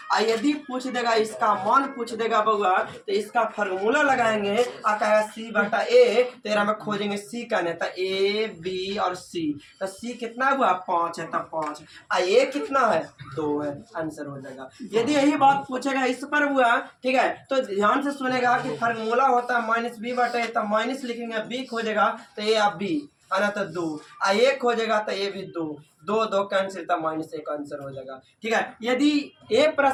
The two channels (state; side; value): identical; both; correlation 1.00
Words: यदि पूछ देगा इसका मान पूछ देगा बउआ, तो इसका फार्मूला लगाएंगे और कहेगा सी बटा ए, तेरा में खोजेंगे सी का नहीं, तो ए बी और सी, तो सी कितना हुआ 5 है, तब 5 ए कितना है 2 है, आंसर हो जाएगा। यदि यही बात पूछेगा इस पर हुआ, ठीक है, तो ध्यान से सुनेगा कि फार्मूला होता है माइनस बी बटा ए, तब माइनस लिखेंगे, बी खोजेगा तो ए अब बी है ना, तो 2 एक हो जाएगा तो ये भी 2 कैंसिल, तब माइनस 1 आंसर हो जाएगा, ठीक है। यदि ए